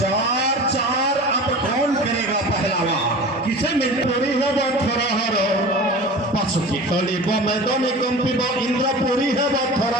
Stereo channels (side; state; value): both; normal; correlation 0.36